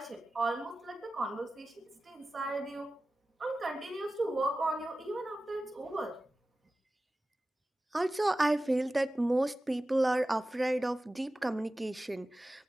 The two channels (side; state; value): both; normal; correlation 0.95